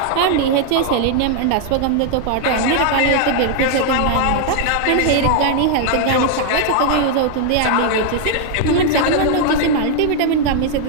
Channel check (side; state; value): both; different; correlation 0.00